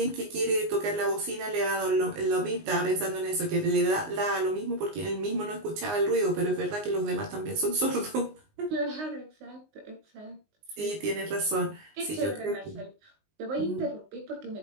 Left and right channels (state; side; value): late; left; 19 ms